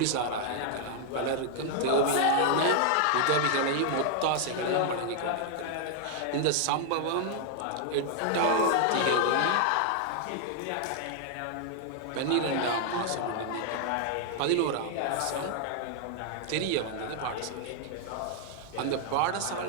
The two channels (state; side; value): different; both; correlation 0.00